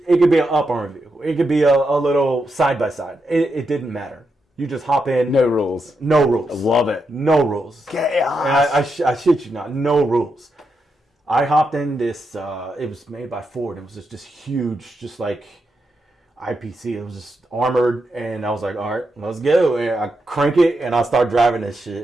could be an up-armored vehicle. It could be a little side-by-side. It didn't matter. You just hop in. No rules. No rules. I love it. No rules. Chaos. I shit you not. No rules. I hopped in this. It was made by Ford. It was just this huge, just like IPC. It was just armored, and I was like, all right, let's go. And I crank it, and I start driving this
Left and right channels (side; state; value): both; normal; correlation 0.84